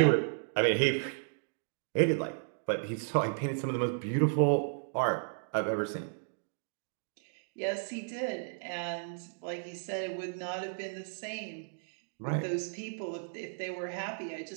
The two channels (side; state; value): left; silent; digital silence